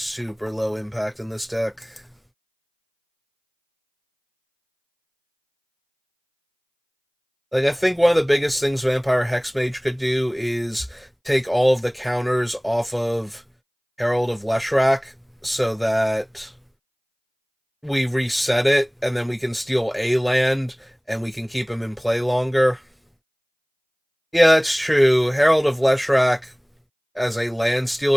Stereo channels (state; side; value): identical; both; correlation 1.00